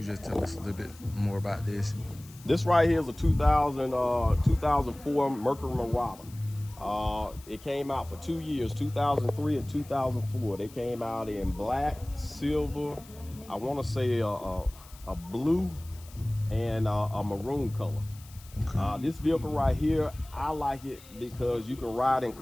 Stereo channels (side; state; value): left; noise; hiss, 22 dB below the sound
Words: just tell us a little bit more about this. This right here is a 2004 Mercury Marauder. It came out for 2 years, 2003 and 2004. They came out in black, silver, I want to say a blue, and a maroon color. Okay. This vehicle right here, I like it because you can ride in